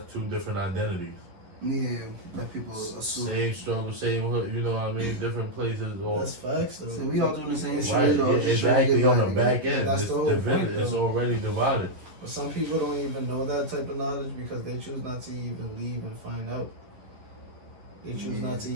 two different identities. Yeah, that people assume. Same struggle, same hood, you know what I mean? Different places or That's facts, though. So we all doing the same shit. right, or yeah, just trying to exactly get on the by back end. That's It's the whole divided, point, it's though. already divided. But some people don't even know that type of knowledge because they choose not to even leave and find out. They choose not to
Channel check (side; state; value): left; late; 11 ms